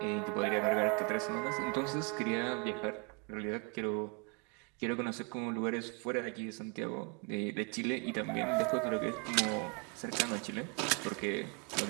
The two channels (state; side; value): quieter; left; 33.7 dB